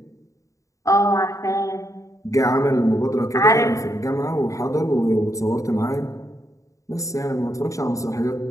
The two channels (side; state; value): right; late; 0.16 ms